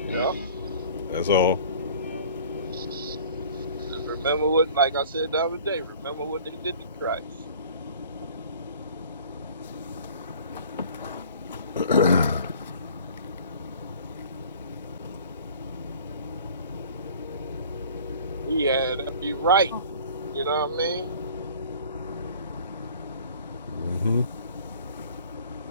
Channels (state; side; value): inverted; both; correlation -0.48